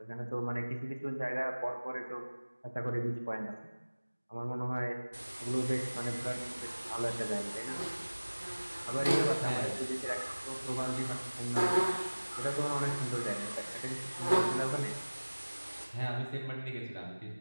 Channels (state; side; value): inverted; both; correlation -1.00